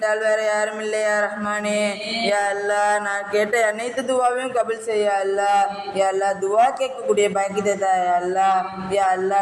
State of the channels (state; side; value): identical; both; correlation 1.00